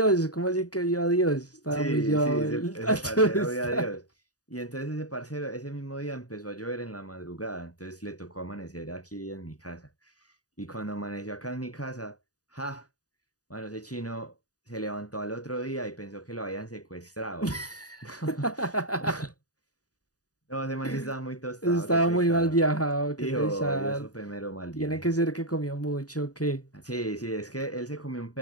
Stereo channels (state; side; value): late; right; 0.67 ms